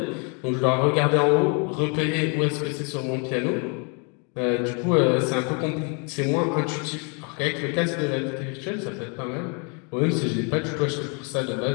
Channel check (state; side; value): quieter; right; 36.0 dB